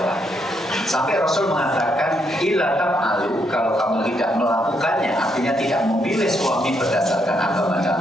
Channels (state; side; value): normal; both; correlation 0.76